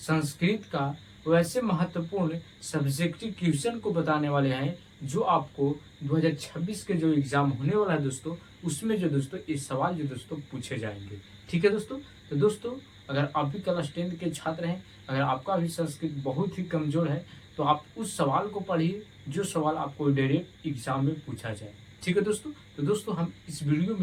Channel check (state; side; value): identical; both; correlation 1.00